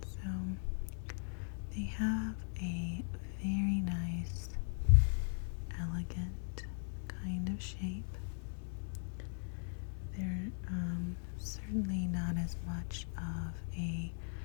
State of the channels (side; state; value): right; silent; digital silence